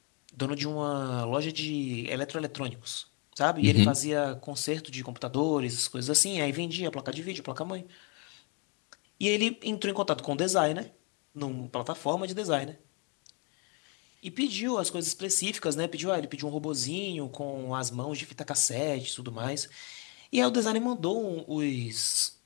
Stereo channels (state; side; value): quieter; right; 34.3 dB